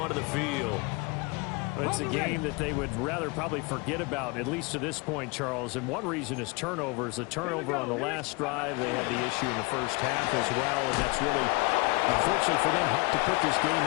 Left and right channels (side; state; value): right; quieter; 27.2 dB